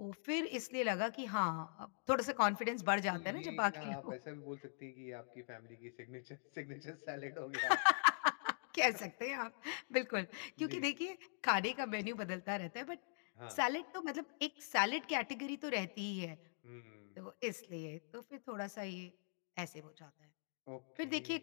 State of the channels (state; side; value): silent; right; digital silence